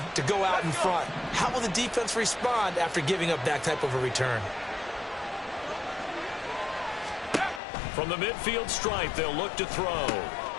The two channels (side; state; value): right; drops out; at 7.6 s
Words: to go out in front. How will the defense respond after giving up that type of a return? From the midfield stripe, they'll look to throw.